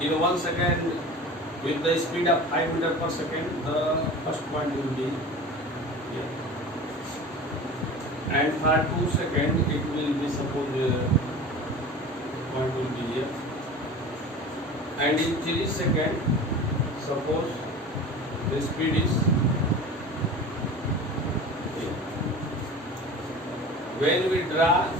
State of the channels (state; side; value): normal; both; correlation 0.36